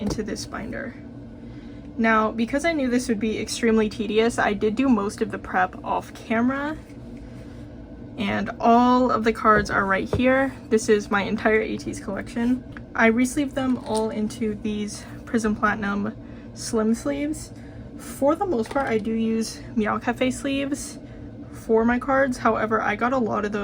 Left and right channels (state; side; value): identical; both; correlation 1.00